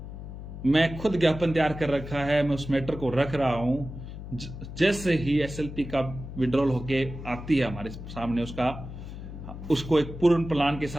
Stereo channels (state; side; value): noise; left; hum, 11 dB below the sound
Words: मैं खुद ज्ञापन तैयार कर रखा है, मैं उस मैटर को रख रहा हूं। जैसे ही एसएलपी का विड्रॉल होके आती है हमारे सामने, उसको एक पूर्ण प्लान के